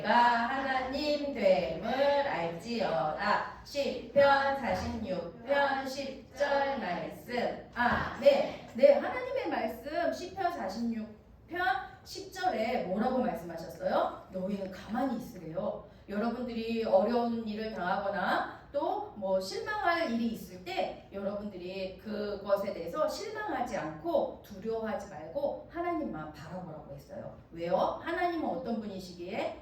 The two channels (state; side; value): identical; both; correlation 1.00